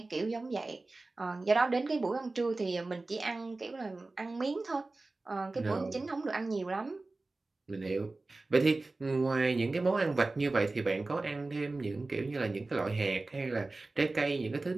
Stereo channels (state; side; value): quieter; left; 3.3 dB